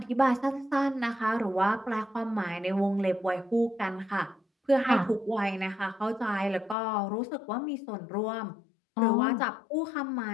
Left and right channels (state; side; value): drops out; right; at 6.8 s